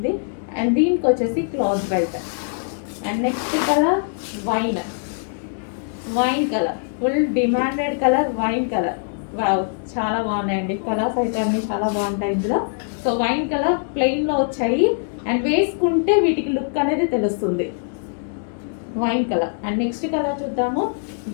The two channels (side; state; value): right; silent; digital silence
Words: అండ్ దీనికి వచ్చేసి cloth belt. And next colour wine colour, full demanded colour wine colour. Wow, చాలా బాగున్నాయండి కలర్స్ అయితే అన్నీ చాలా బాగుంటాయి ఇందులో. సో వైన్ కలర్ ప్లెయిన్లో వచ్చాయి అండ్ వేసుకుంటే వీటికి లుక్ అనేది తెలుస్తుంది. Wine colour. And next colour చూద్దాము,